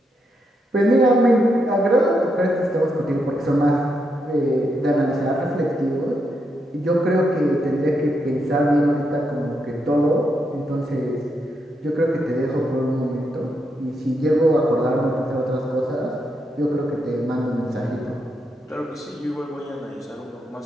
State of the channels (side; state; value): both; normal; correlation 0.81